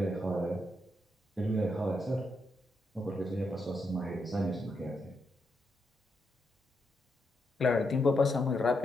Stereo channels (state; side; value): normal; both; correlation 0.81